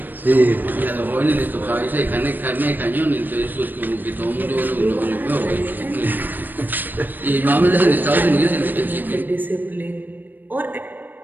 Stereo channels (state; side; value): late; left; 0.090 ms